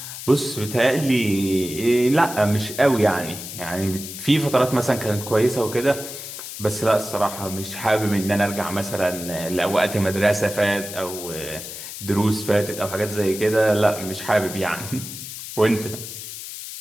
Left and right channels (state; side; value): noise; left; hiss, 10 dB below the sound